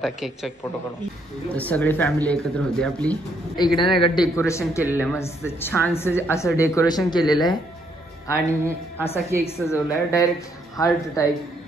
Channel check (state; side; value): normal; both; correlation 0.72